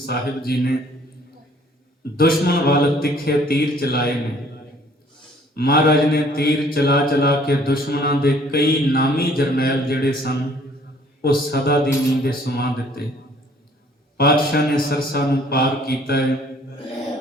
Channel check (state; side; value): normal; both; correlation 0.58